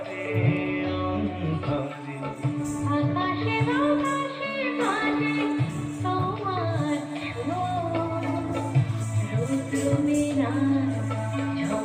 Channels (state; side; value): identical; both; correlation 1.00